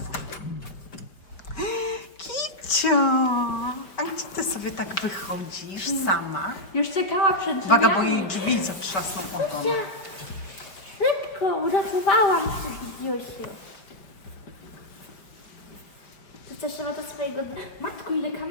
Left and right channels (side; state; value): right; late; 5.2 ms